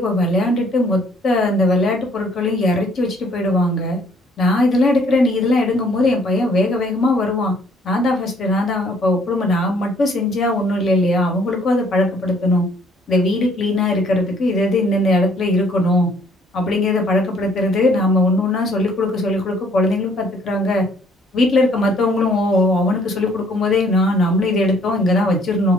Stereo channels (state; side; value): normal; both; correlation 0.62